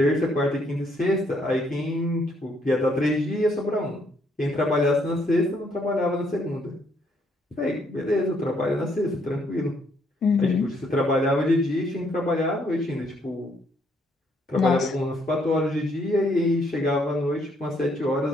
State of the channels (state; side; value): normal; both; correlation 0.70